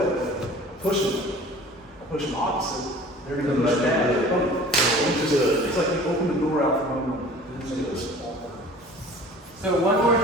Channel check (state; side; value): normal; both; correlation 0.45